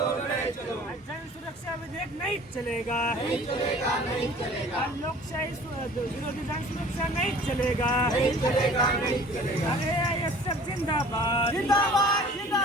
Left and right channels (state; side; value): normal; both; correlation 0.48